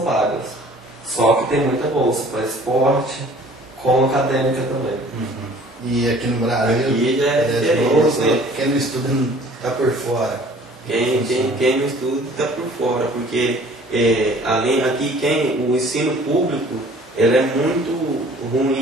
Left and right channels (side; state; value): both; normal; correlation 0.51